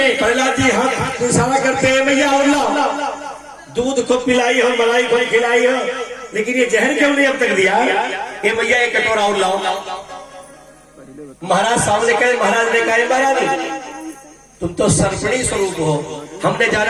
प्रहलाद जी हाथ इशारा करते हैं, मैया और लाओ। दूध खुद पिलाई हो, मलाई खुद खिलाई हो, लेकिन ये जहर क्यों नहीं अब तक दिया? ये मैया एक कटोरा और लाओ। महाराज सामने कहे, महाराज ने कहा महाराज तुम तो सर्पणी स्वरूप हो, हमने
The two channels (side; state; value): both; identical; correlation 1.00